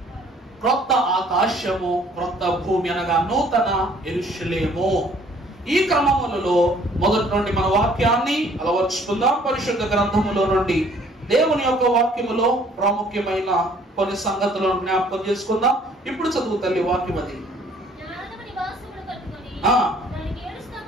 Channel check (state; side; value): normal; both; correlation 0.58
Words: క్రొత్త ఆకాశము, క్రొత్త భూమి అనగా నూతన యెరూషలేము. ఈ క్రమములలో మొదటి నుండి మన వాక్యాన్ని అలవర్చుకుందాం. పరిశుద్ధ గ్రంథములో నుండి దేవుని యొక్క వాక్యములో ప్రాముఖ్యమైన కొన్ని సంగతులను జ్ఞాపకం చేసుకుందాం. ఇప్పుడు చదువు తల్లి వాక్యం. అది